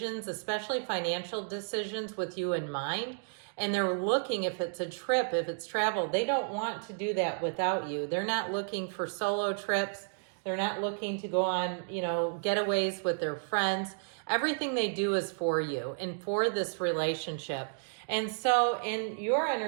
especially financial decisions, with you in mind. And they're looking, if it's a trip, if it's travel, they don't want to do that without you. They're not looking for solo trips. They're not looking to go on, getaways with their friends. Everything they do is for you and for this relationship. And so in your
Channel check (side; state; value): left; silent; digital silence